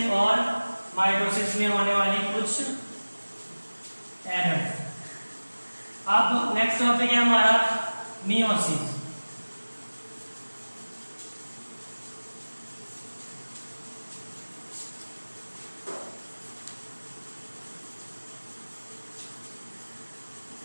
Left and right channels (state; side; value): inverted; both; correlation -1.00